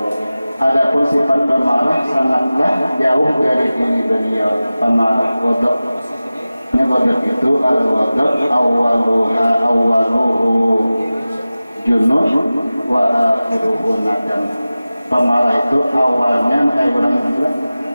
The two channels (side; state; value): both; inverted; correlation -0.96